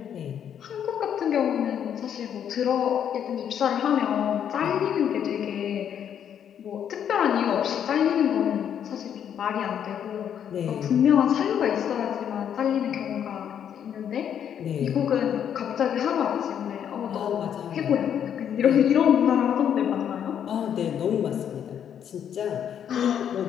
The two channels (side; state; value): right; quieter; 9.0 dB